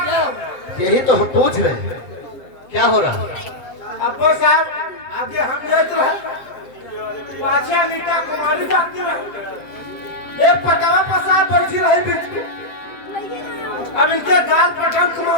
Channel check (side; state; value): right; late; 7.8 ms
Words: यही तो हम पूछ रहे हैं, क्या हो रहा? अब्बा साहब आगे हम देख रहे पाछा नीता कुमारी जाती रहे, एक पटावा पसार बैठी रही बीच में, अब इनके गाल पटन